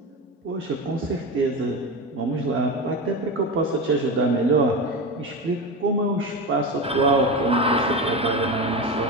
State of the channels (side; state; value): both; normal; correlation 0.22